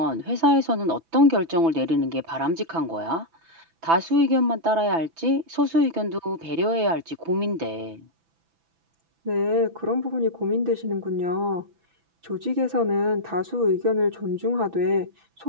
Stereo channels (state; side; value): late; left; 6.0 ms